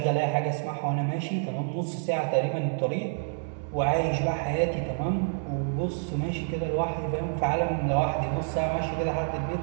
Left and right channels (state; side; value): silent; left; 59 dB below the other